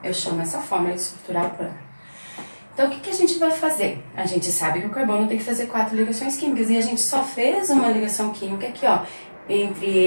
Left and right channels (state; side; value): inverted; both; correlation -1.00